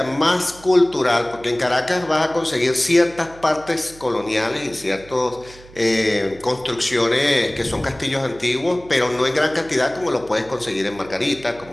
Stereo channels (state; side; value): noise; right; hum, 22 dB below the sound